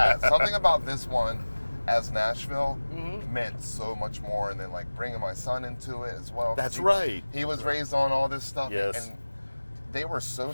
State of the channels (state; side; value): inverted; both; correlation -1.00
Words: about this one as Nashville meant so much more, and then like bringing my son into it as well. That's right. He was raised on all this stuff, Yes. and they were so